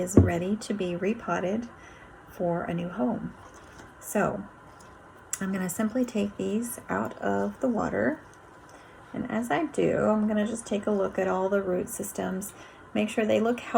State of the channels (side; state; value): both; identical; correlation 1.00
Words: ready to be repotted for a new home. So I'm going to simply take these out of the water, and as I do, I'm going to just take a look at all the root systems, make sure they look